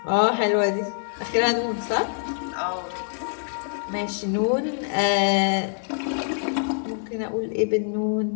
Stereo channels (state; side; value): silent; right; digital silence